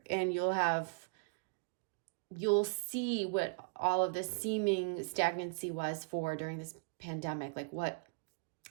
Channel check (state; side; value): quieter; left; 32.5 dB